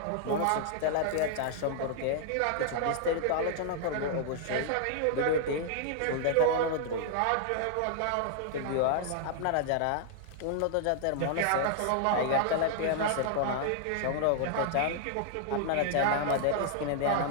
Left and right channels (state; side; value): different; both; correlation -0.01